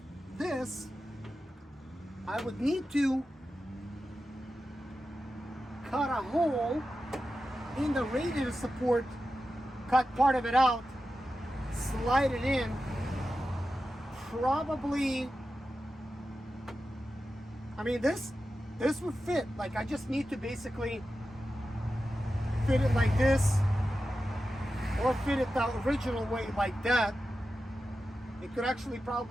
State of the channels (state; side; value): normal; both; correlation 0.92